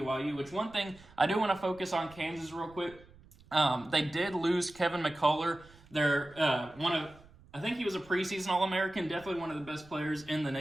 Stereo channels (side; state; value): right; noise; rumble, 24 dB below the sound